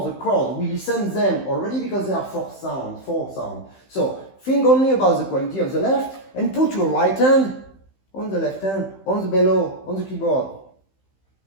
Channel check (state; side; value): late; right; 15 ms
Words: the chord. We listen them already because they are four sound. So think only about the quality of the left and put your right hand on the left hand, on the bellow, on the keyboard.